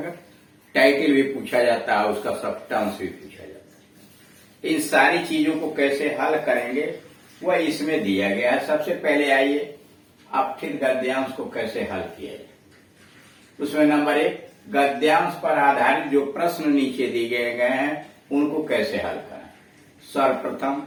टाइटल भी पूछा जाता है, उसका सब्सटेंस भी पूछा जाता है। इन सारी चीजों को कैसे हल करेंगे वह इसमें दिया गया है। सबसे पहले आइए अपठित गद्यांश को कैसे हल किया जाए। उसमें नंबर 1, गद्यांश पर आधारित जो प्रश्न नीचे दिए गए हैं उनको कैसे हल करें। सर्वप्रथम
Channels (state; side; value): identical; both; correlation 1.00